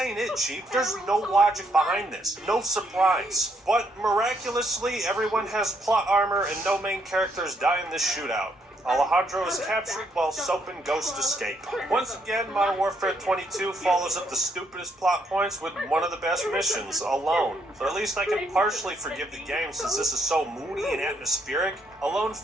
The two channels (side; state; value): both; normal; correlation 0.72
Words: it, Chief. There's no logic behind this. No surprise. But miraculously, everyone has plot armor and no main characters die in this shootout. Alejandro is captured while Soap and Ghost escape. Once again, Modern Warfare 22 follows up the stupidest plot points with one of the best missions, Alone. So at least I can partially forgive the game since this is so moody and atmospheric. Alone